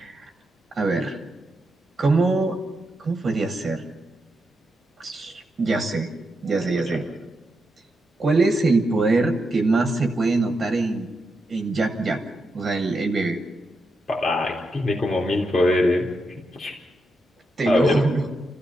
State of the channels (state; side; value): normal; both; correlation 0.85